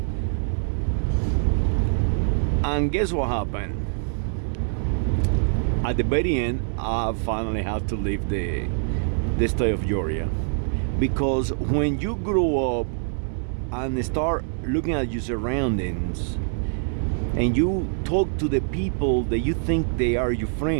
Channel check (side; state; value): left; silent; 62 dB below the other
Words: And guess what happened? At the very end, I finally had to leave the state of Georgia. Because when you grow up and start looking at your surroundings, and you talk to the people that you think they are your